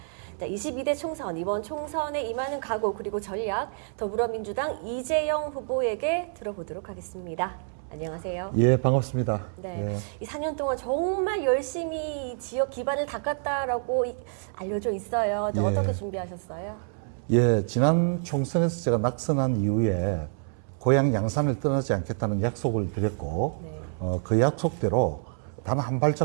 22대 총선, 이번 총선에 임하는 각오 그리고 전략, 더불어민주당 이재영 후보에게 들어보도록 하겠습니다. 안녕하세요. 예, 반갑습니다. 네, 예. 이 4년 동안 정말 열심히 지역 기반을 닦았다라고 알려져 있어요. 예. 어떻게 준비하셨어요? 예, 지난 총선에서 제가 낙선한 이후에 고향 양산을 떠나지 않겠다는 약속을 드렸고, 네. 그 약속대로 단 한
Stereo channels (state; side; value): silent; left; 60 dB below the other